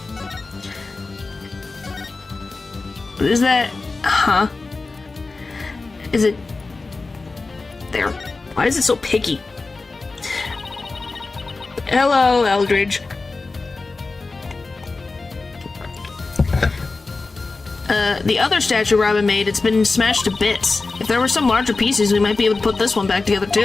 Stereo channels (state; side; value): quieter; right; 3.7 dB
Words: What is that? Huh? Is it... there. Why is it so picky? Hello, Eldridge. The other statue Robin made, it's been smashed to bits. If there were some larger pieces, we might be able to put this one back together